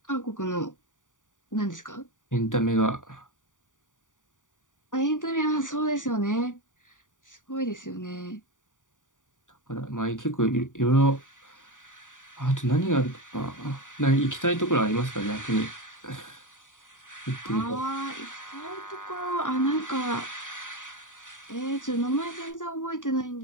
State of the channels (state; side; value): late; right; 0.87 ms